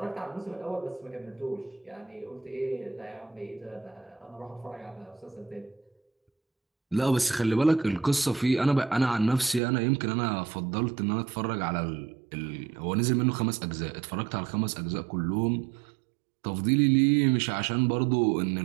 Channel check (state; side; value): drops out; left; at 9.6 s